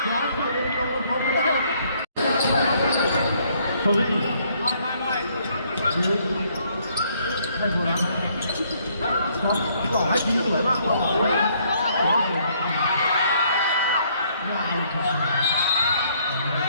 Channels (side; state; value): both; inverted; correlation -0.66